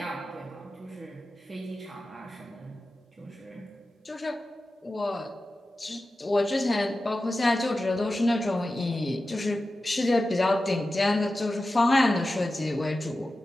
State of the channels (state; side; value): normal; both; correlation 0.94